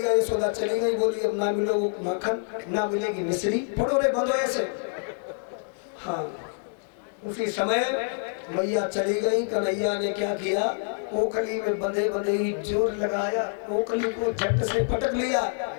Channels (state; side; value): silent; right; digital silence